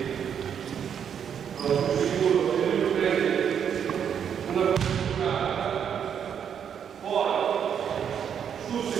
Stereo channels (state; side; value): quieter; left; 8.2 dB